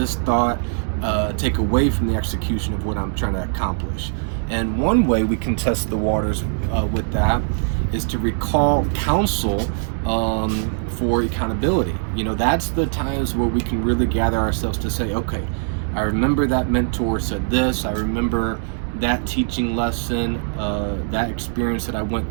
thought take away from the execution of what I'm trying to accomplish? And one way we can test the waters with that is to recall counsel for accountability. That's the times where we can really gather ourselves to say, okay, I remember that mentor said this, I remember that teaching lesson, that experience that I went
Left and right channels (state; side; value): silent; left; digital silence